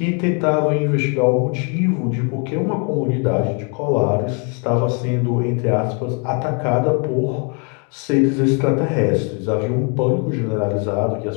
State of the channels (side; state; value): right; quieter; 36.5 dB